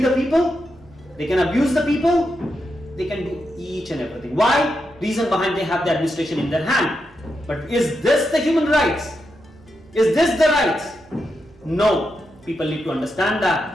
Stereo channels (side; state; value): right; noise; hum, 28 dB below the sound